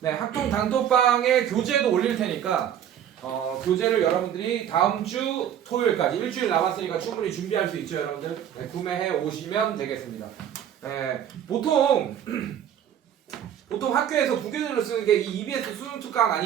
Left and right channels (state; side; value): quieter; left; 9.8 dB